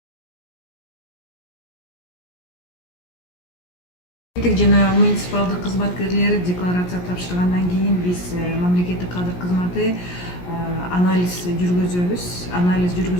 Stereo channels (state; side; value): late; right; 17 ms